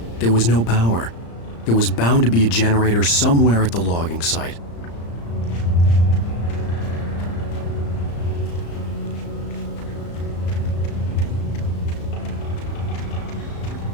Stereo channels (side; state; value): right; late; 35 ms